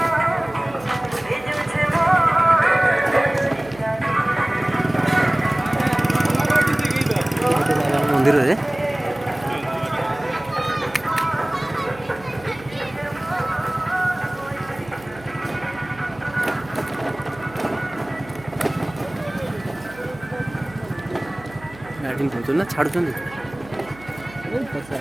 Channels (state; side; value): noise; right; hum, 20 dB below the sound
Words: ମନ୍ଦିରରେ ଗାଡ଼ି ନେଉଛନ୍ତି ନା ଛାଡ଼ୁଛନ୍ତି?